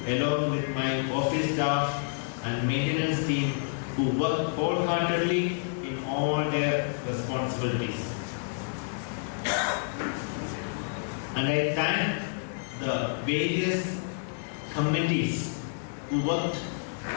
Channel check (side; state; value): right; silent; 59 dB below the other